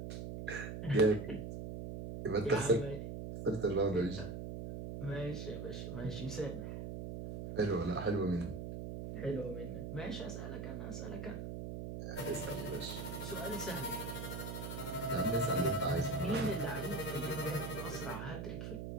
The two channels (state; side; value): noise; right; hum, 6 dB below the sound